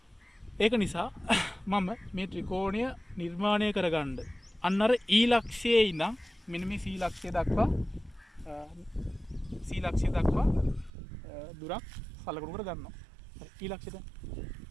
ඒක නිසා මම මේ ත්‍රිකෝණය නිර්මාණය කරගන්න අන්න අර E ලක්ෂයේ ඉඳන් මෙන්න මේ C ලක්ෂය දක්වා දුරක් සලකුණු කර ගන්නවා. හරි. E ලක්ෂයට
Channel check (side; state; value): left; drops out; at 10.9 s